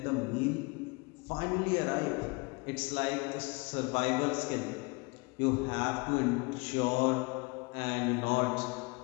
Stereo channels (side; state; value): right; quieter; 28.9 dB